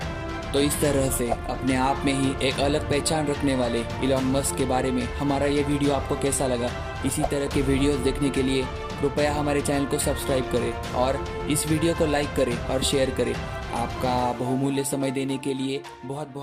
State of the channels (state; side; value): identical; both; correlation 1.00